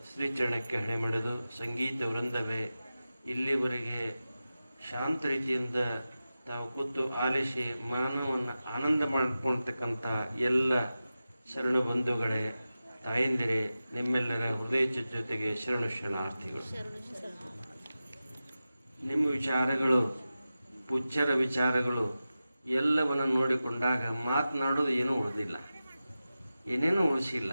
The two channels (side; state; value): both; inverted; correlation -0.94